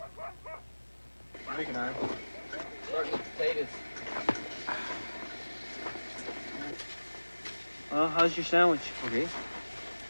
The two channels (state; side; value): inverted; both; correlation -1.00